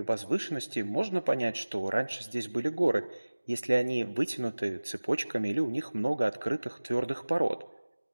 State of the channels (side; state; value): both; inverted; correlation -1.00